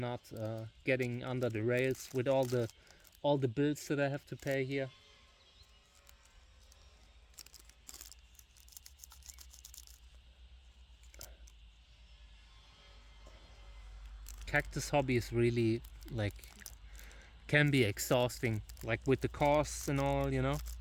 getting under the rails with all the bills that I have to pay here. Cactus hobby is really like can be exhausting, like with the costs and all, you know.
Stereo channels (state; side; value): identical; both; correlation 1.00